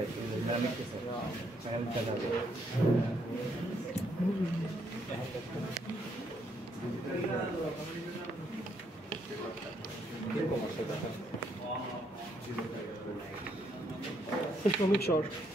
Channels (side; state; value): both; normal; correlation 0.73